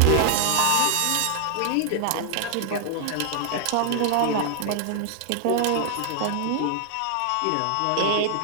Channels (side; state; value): both; different; correlation 0.00